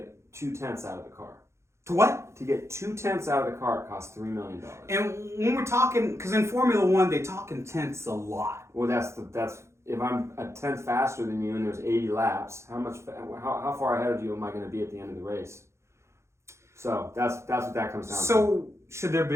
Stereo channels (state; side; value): late; left; 0.13 ms